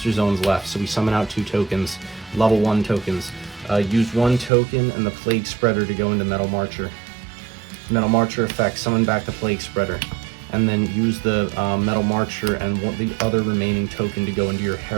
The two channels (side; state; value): left; drops out; at 4.5 s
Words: zones left, so we summon out 2 tokens, level 1 tokens. Use 1 token and the Plague Spreader to go into Metal Marcher. Metal Marcher effect, summon back the Plague Spreader. And then use the Metal Marcher and the other remaining token to go into your